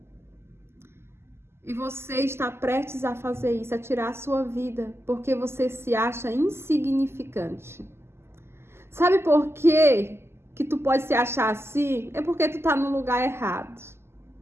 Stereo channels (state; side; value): late; left; 0.12 ms